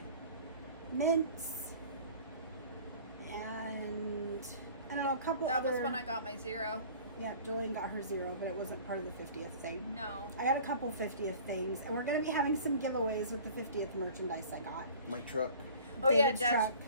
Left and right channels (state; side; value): inverted; both; correlation -0.46